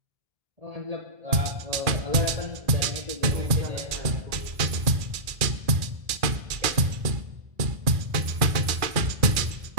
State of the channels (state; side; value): late; left; 2.3 ms